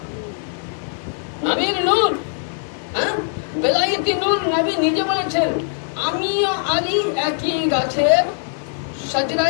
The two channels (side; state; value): right; silent; 56 dB below the other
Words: নবীর নূর। হ্যাঁ, বেলায়েতি নূর। নবী নিজে বলেছেন আমিও আলী একই গাছের